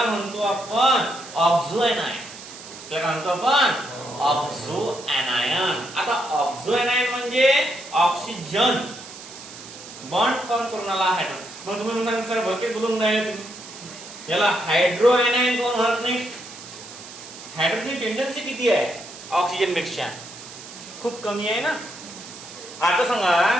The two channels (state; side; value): noise; right; hiss, 15 dB below the sound